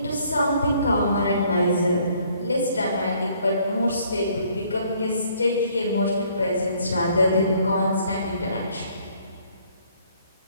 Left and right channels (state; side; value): inverted; both; correlation -0.63